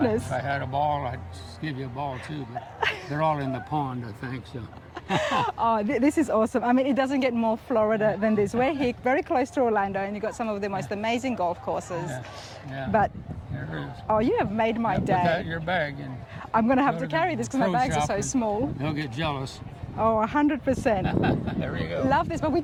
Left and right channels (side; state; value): both; identical; correlation 1.00